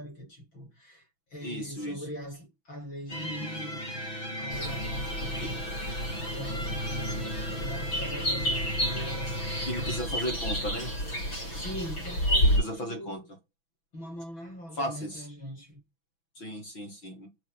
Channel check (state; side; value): late; right; 6.1 ms